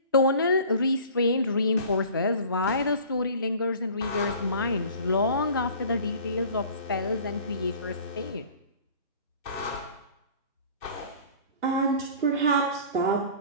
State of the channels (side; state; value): both; inverted; correlation -0.45